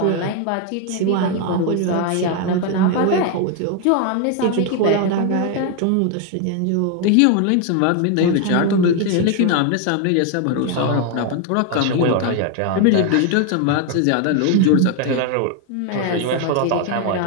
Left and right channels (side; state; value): both; different; correlation 0.01